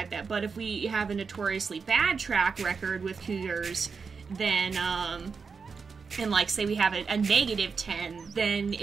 that. But if we have a notoriously bad track record with cougars, then, and like say we have a -10, then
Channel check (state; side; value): quieter; left; 5.3 dB